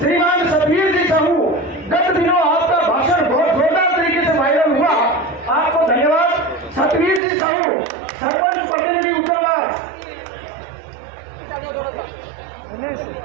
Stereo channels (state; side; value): drops out; left; at 7.2 s